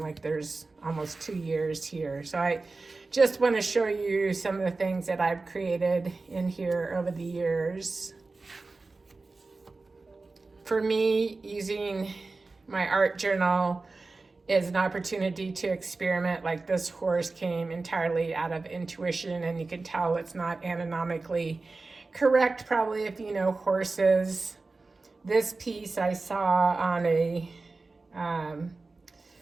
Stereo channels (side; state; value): left; quieter; 3.6 dB